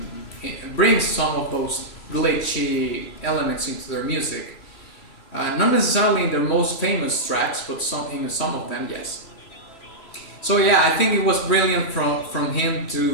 it brings some of those glitchy elements into their music. Not necessarily in their most famous tracks, but in some of them, yes. So yeah, I think it was brilliant from him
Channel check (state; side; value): late; right; 3.2 ms